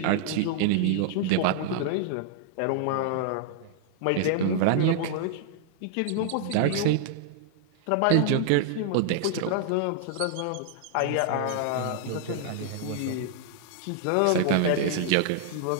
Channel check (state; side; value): different; both; correlation -0.01